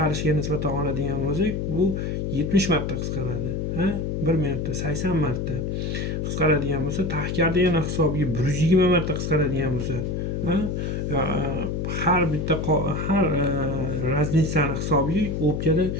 nisbatan oladigan bo'lsak, bu 70 marta qisqaradi. 1 minutda 80 marta qisqaradigan bo'lsa, tahkardagina hisobiga 120 marta qisqaradigan bo'lsa, har bitta har razницаni hisobiga o'pkada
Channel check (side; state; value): left; noise; hum, 2 dB below the sound